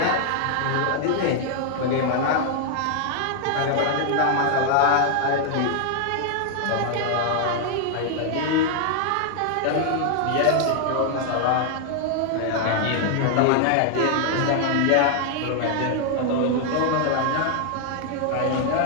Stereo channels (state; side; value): different; both; correlation 0.00